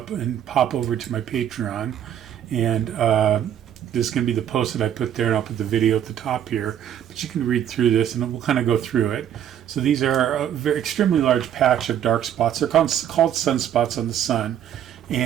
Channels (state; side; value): quieter; left; 10.1 dB